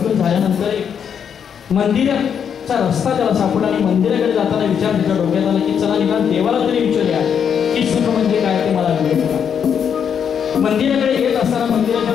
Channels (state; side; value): quieter; right; 7.7 dB